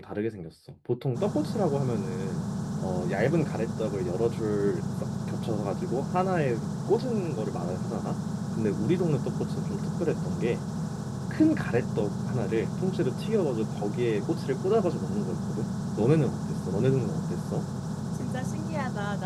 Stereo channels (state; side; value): identical; both; correlation 1.00